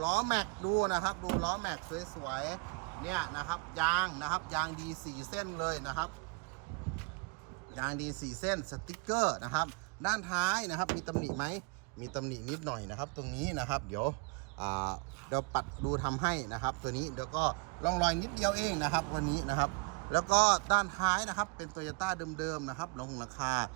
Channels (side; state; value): left; quieter; 30.9 dB